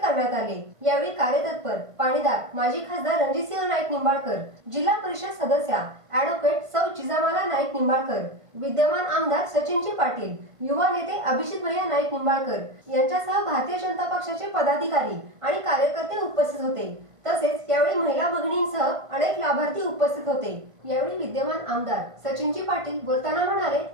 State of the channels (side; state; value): left; late; 1.5 ms